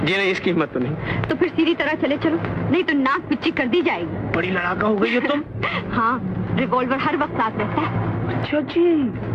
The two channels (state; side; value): identical; both; correlation 1.00